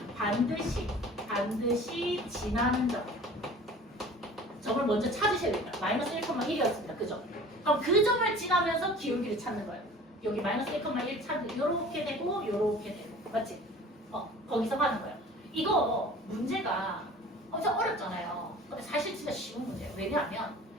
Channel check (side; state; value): both; normal; correlation 0.44